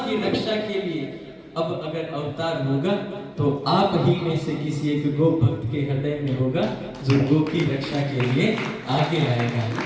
रक्षा के लिए अब अगर अवतार होगा तो आप ही में से किसी एक गो भक्त के हृदय में होगा जो गो की रक्षा के लिए आगे आएगा।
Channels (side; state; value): both; identical; correlation 1.00